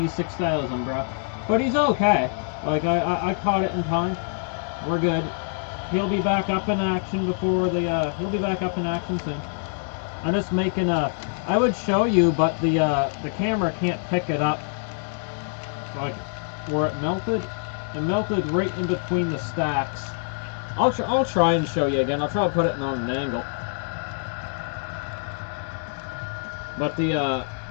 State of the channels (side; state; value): right; silent; 62 dB below the other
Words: 6000, bro. But he's okay. Like, I caught it in time. We're good. He'll be back up in action before the, he'll be back up in action soon. I'm just making I would show you, but the camera can't pick it up. Like, where it melted right in between the stacks. I'll try and show you again. I'll try to put it on an angle. But